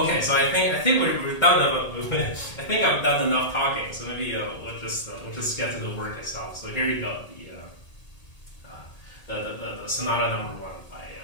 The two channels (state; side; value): late; right; 1.8 ms